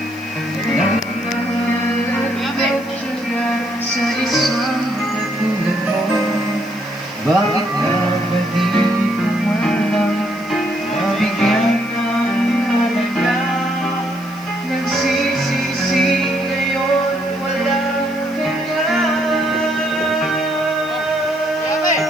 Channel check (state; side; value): noise; left; hiss, 24 dB below the sound